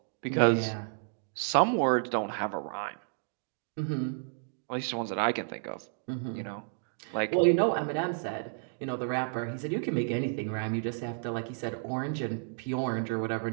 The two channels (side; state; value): left; silent; digital silence